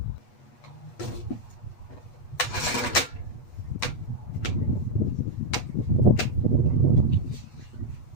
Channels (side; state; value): right; late; 8.3 ms